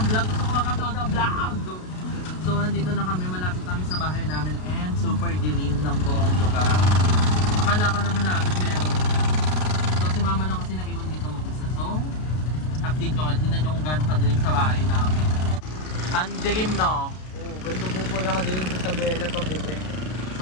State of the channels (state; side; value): late; right; 33 ms